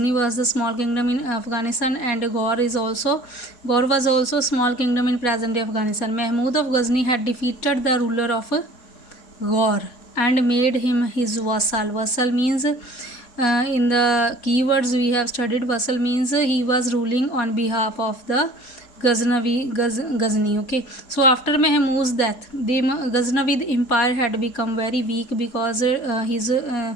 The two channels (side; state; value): right; late; 4.2 ms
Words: was the small kingdom in Afghanistan, and Ghor was also small kingdom in present-day Afghanistan. Mahmud of Ghazni had defeated the ruler of Ghor and made him his vassal. Vassal means in the keywords we have studied, vassal means he was ruling on behalf of the Ghazni. Okay, so after Mahmud's death, the Ghaznavid empire had become very weak because his